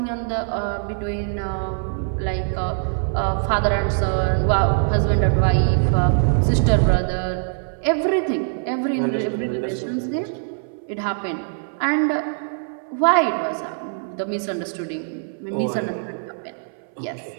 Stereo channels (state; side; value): silent; left; 64 dB below the other